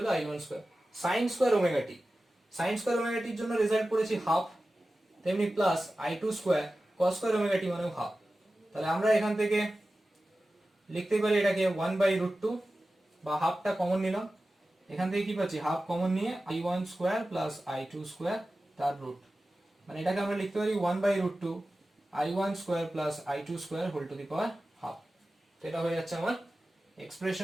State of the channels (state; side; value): normal; both; correlation 0.95